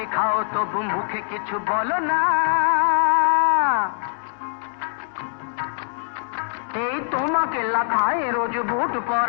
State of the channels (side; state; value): right; silent; digital silence